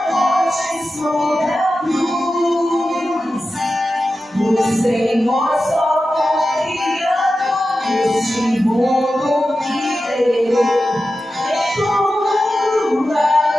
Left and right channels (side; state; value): both; normal; correlation 0.92